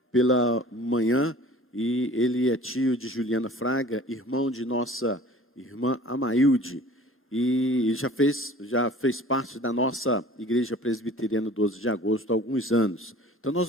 pela manhã e ele é tio de Juliana Fraga, irmão de nossa irmã Amailde. E já fez parte da nossa igreja presbiteriana 12 de agosto há alguns anos. Então nós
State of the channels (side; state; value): both; normal; correlation 0.45